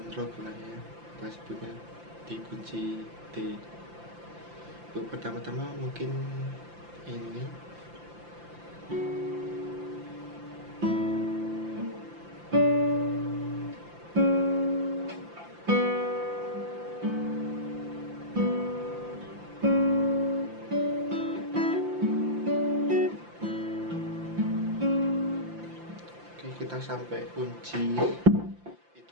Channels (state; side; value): late; left; 5.8 ms